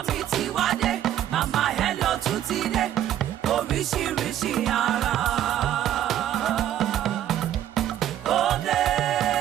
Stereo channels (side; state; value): left; quieter; 11.6 dB